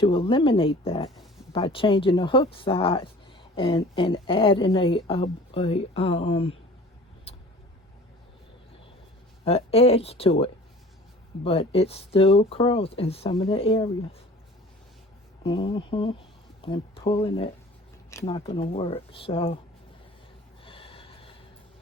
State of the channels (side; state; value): both; normal; correlation 0.45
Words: eliminate that by changing the hook size and adding a edge to it. But it still curls in some of the areas. And pulling it, it's not going to work. So